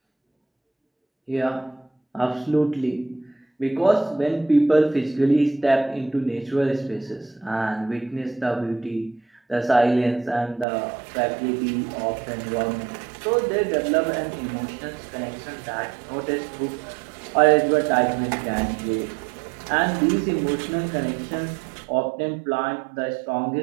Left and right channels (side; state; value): left; drops out; at 10.7 s